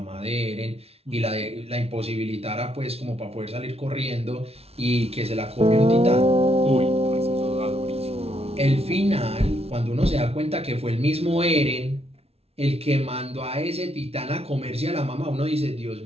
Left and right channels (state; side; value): late; left; 0.30 ms